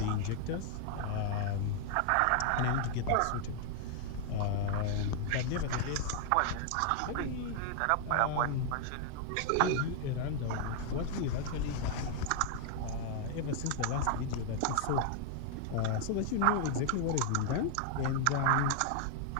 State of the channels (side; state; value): both; different; correlation 0.00